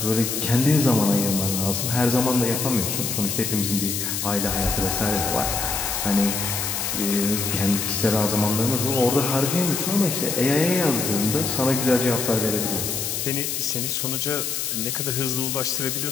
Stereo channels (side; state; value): left; noise; hiss, 2 dB below the sound